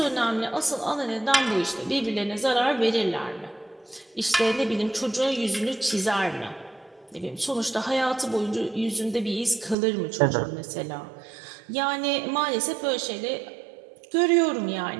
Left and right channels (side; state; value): left; drops out; at 9.8 s